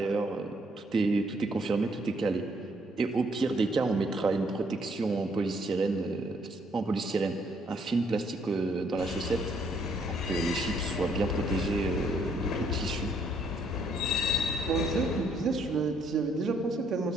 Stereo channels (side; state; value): both; normal; correlation 0.68